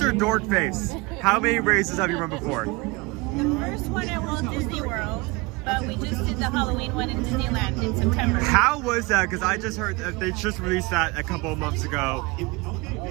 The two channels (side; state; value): left; quieter; 25.1 dB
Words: dork face. How many races have you run before? The first one at Walt Disney World, but we just did the Halloween one in Disneyland in September. How was that? Because I just heard that they just released that a couple of months ago.